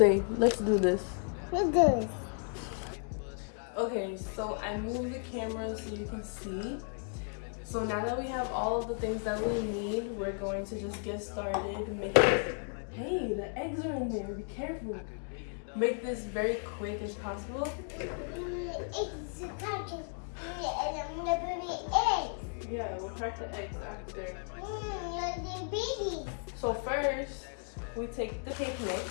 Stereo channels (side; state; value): right; silent; 55 dB below the other